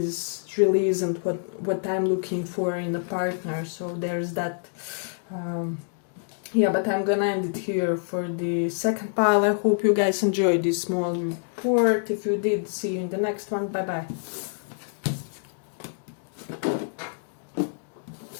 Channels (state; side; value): silent; right; digital silence